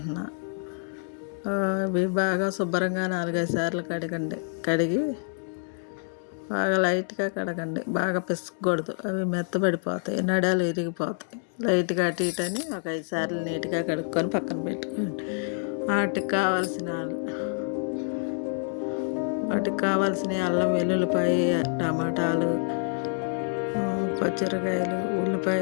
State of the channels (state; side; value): silent; right; 60 dB below the other